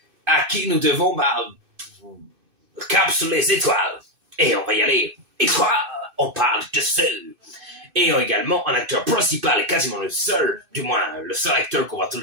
À qui nous devons, cap sur les étoiles. Et on va y aller. Étoiles, on parle de ceux. Et également un acteur principal et quasiment le seul, du moins le seul acteur qu'on voit tout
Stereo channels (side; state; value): left; late; 2.6 ms